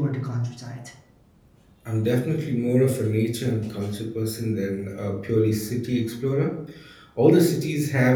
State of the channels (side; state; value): both; identical; correlation 1.00